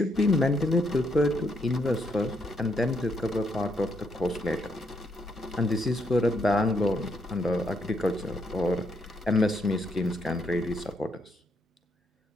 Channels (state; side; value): normal; both; correlation 0.75